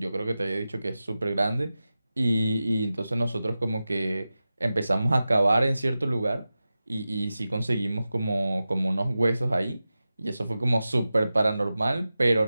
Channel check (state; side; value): inverted; both; correlation -0.94